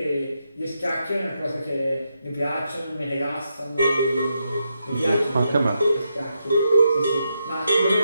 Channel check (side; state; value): both; inverted; correlation -0.83